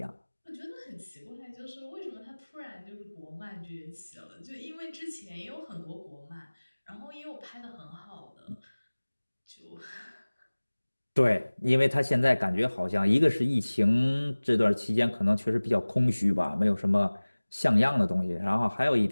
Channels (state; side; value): inverted; both; correlation -1.00